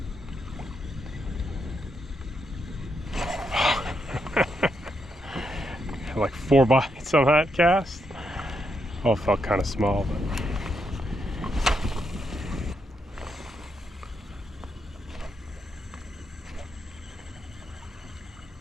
Like 4 bites on that cast. Oh, it felt kind of small, but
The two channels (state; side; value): normal; both; correlation 0.80